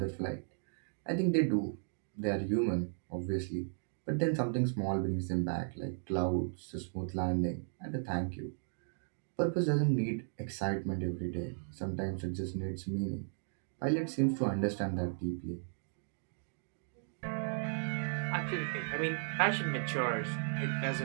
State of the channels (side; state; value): left; silent; digital silence